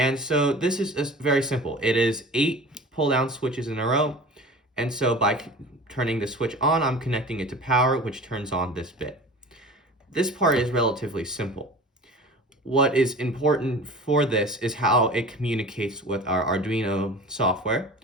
so this is very simple. It is 8 pull-down switches in a row. And so by turning the switch on, I'm connecting it to power, which turns on this bit. This part is relatively simple. What is important for this is how it communicates with our Arduino software,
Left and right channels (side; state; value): both; normal; correlation 0.39